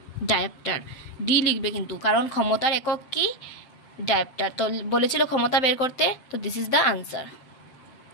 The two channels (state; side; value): late; right; 7.6 ms